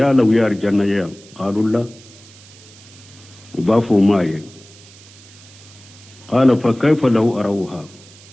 uye arjanna ya qalu la bafo maye qala fa kayfa lahu arawha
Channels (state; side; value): noise; right; hiss, 22 dB below the sound